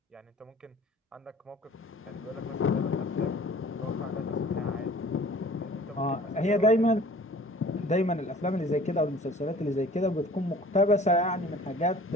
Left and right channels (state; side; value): normal; both; correlation 0.48